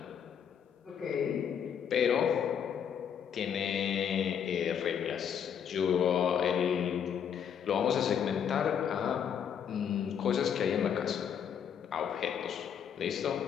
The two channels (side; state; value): right; quieter; 8.2 dB